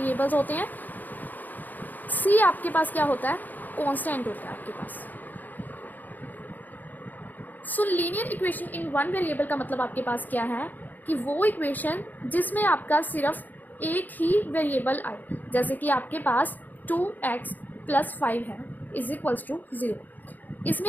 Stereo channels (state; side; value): late; right; 0.085 ms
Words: होते हैं. सी आपके पास क्या होता है? कांस्टेंट होता है आपके पास. So linear equation in one variable का मतलब आपके पास क्या है कि वो इक्वेशन जिसमें आपका सिर्फ एक ही वेरिएबल आए. जैसे कि आपके पास 2x + 5 है इज इक्वल्स टू 0. इसमें